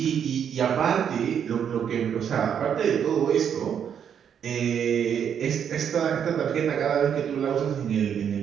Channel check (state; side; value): quieter; left; 8.3 dB